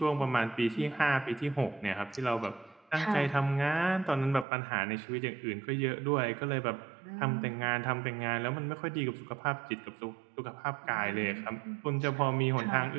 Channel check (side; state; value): left; drops out; at 4.5 s